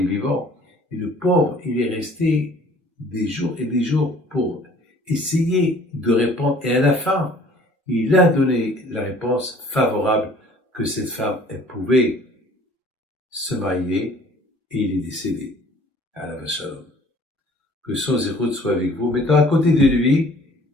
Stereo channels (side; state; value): both; normal; correlation 0.53